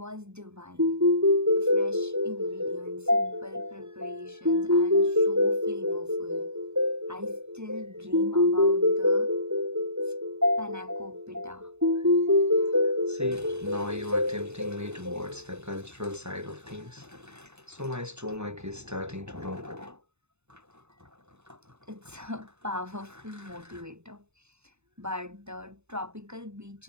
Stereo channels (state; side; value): late; left; 0.81 ms